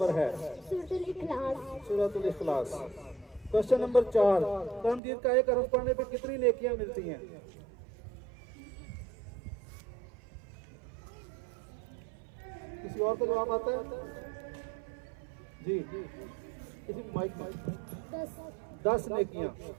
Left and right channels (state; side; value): drops out; left; at 5.0 s